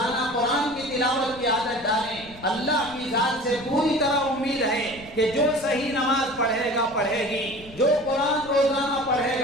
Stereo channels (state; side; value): noise; left; rumble, 20 dB below the sound